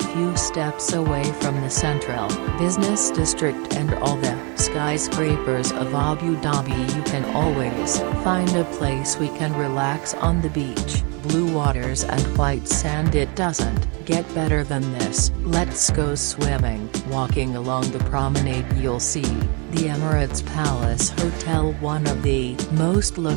steps away from the central business district and all the skyscrapers of Abu Dhabi. You can always find a place we can relax on the beach. Blue waters and white sand, it doesn't get better than this. Let's go swimming. Walking along the promenade you'll see the Emirates Palace Hotel, one of the most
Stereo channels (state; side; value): quieter; left; 32.9 dB